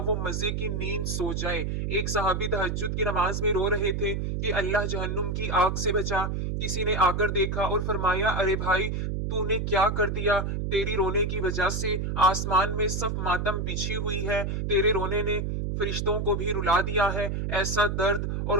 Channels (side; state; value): right; noise; hum, 1 dB below the sound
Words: وہ مزے کی نیند سو جائے۔ ایک صحابی تہجد کی نماز میں رو رہے تھے کہ اللہ جہنم کی آگ سے بچا۔ کسی نے آ کر دیکھا اور فرمایا، ارے بھائی تو نے کیا کر دیا؟ تیری رونے کی وجہ سے آسمان میں صف ماتم بچھی ہوئی ہے، تیرے رونے نے فرشتوں کو بھی رلا دیا ہے۔ ایسا درد اور